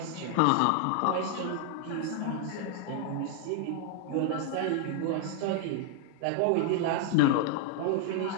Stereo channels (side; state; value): both; different; correlation 0.00